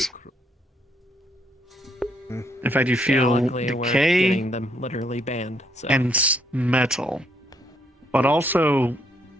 In fact, you feel luckily we're decay getting them literally banned. So. and metal, but also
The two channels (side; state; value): both; normal; correlation 0.71